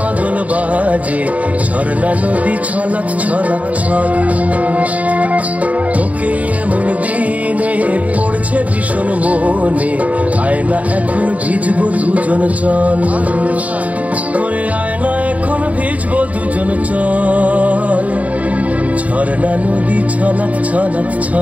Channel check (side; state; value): left; late; 0.070 ms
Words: বাজে ঝর্ণা নদী ছলাৎ ছলাৎ ছল তোকে এমন দিনে পড়ছে ভীষণ মনে আয়না এখন ভিজবো দুজন চল ওরে আয়না এখন ভিজবো দুজন চল ঝর্ণা নদী ছলাৎ ছলাৎ